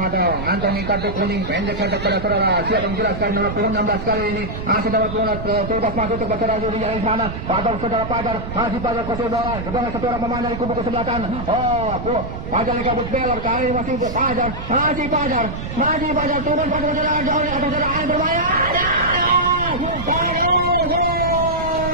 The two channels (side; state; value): right; noise; rumble, 7 dB below the sound